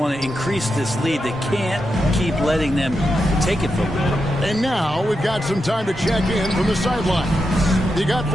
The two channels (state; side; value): normal; both; correlation 0.87